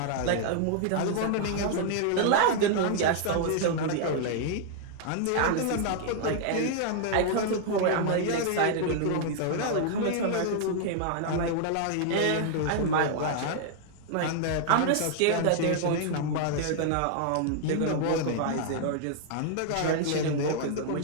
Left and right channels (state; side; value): different; both; correlation -0.01